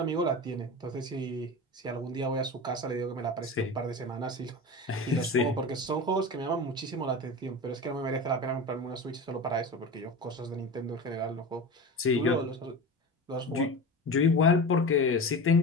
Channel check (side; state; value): both; normal; correlation 0.29